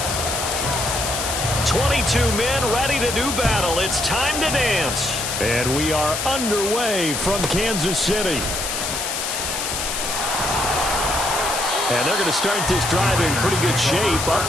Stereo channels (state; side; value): noise; left; hiss, 3 dB below the sound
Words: 22 men ready to do battle. It's time to dance. And we are underway from Kansas City. And they're going to start this drive in pretty good shape, up